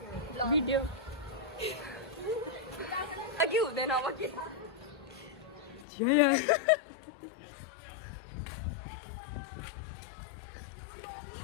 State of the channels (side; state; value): right; drops out; at 5.9 s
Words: भिडियो अघि हुँदैन अब के